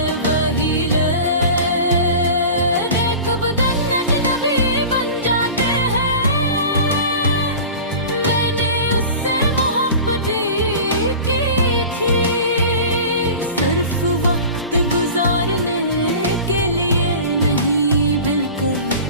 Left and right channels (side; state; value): both; inverted; correlation -0.36